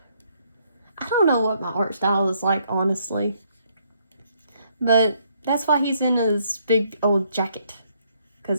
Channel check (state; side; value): inverted; both; correlation -0.70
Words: I don't know what my art style is like, honestly. But that's why he's in his big old jacket.